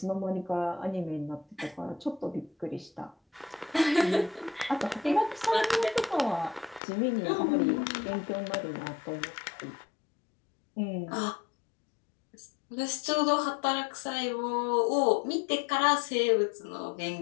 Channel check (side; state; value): right; drops out; at 6.8 s